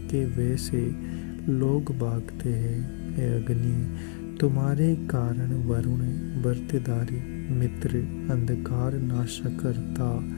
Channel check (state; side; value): silent; right; 60 dB below the other